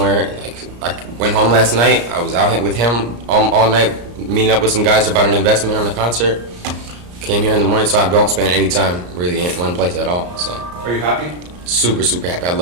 Like, I went home last night. I was out with him all night, meeting up with some guys about an investment on a concert. Came here in the morning, so I don't spend any time really in one place at all. So Are you happy? super happy. I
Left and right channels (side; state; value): left; late; 34 ms